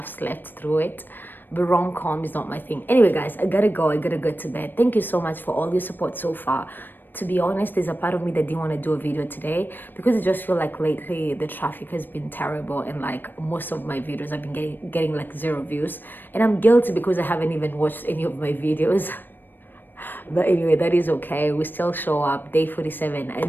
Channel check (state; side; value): late; right; 0.093 ms